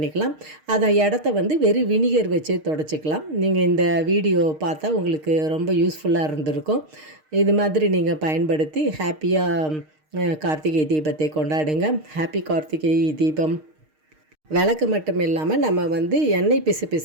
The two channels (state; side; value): late; left; 6.5 ms